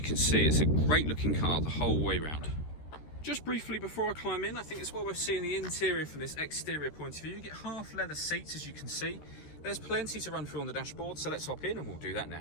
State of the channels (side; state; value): right; late; 13 ms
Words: see it's a great looking car the whole way round. Just briefly before I climb in, I think it's well worth seeing the interior from this exterior point of view. You get half leather seats, as you can see. There's plenty to run through on the dashboard, so let's hop in and we'll do that